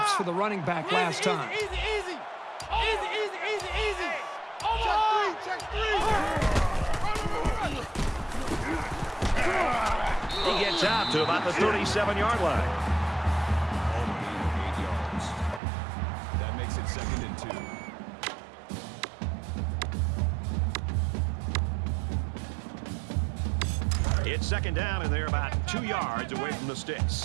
for the running back last time. Easy, easy. Easy, easy, easy, easy. Check 3. He gets out to about the 37-yard line. All the gain of 8 yards. That makes it 2nd and 2. It's second down, and they're about 2 yards away from the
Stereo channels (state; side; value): drops out; left; at 15.6 s